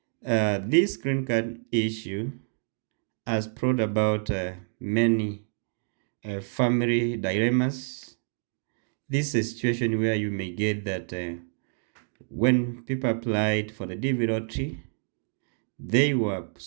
this green card issue has brought about many family dilemmas. This is a situation where you may get that when people applied for the DV lottery, they were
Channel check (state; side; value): silent; left; 59 dB below the other